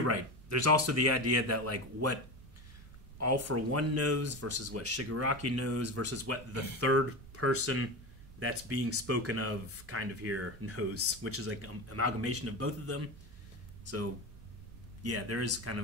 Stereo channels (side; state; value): right; noise; rumble, 19 dB below the sound